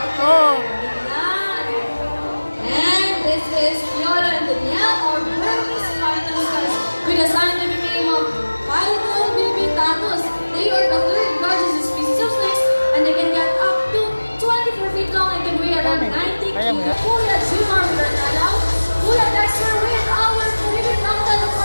Oh. And this is Fiona and Danielle, our Burmese final stars, with a scientific name of Phytolobibitatus. They are the third largest species of snakes, and they can get up to 24 feet long and can weigh around 90 kilos. Kuya Jumar with our Nalaw, Kuya Dexter with our Caribbean Mountain, of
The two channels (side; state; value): both; inverted; correlation -1.00